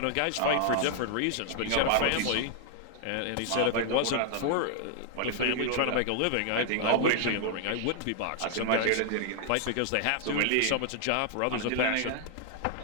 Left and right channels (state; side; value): different; both; correlation 0.00